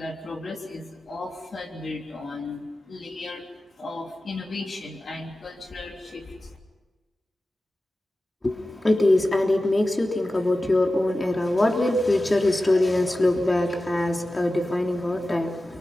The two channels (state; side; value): normal; both; correlation 0.94